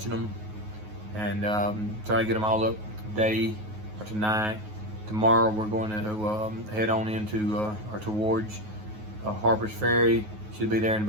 them, and try to get them all up today or tonight. Tomorrow we're going to head on into or towards Harper's Ferry. Should be there in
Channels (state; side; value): late; left; 9.4 ms